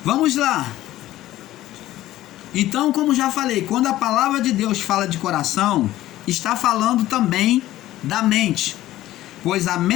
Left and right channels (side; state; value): right; quieter; 14.9 dB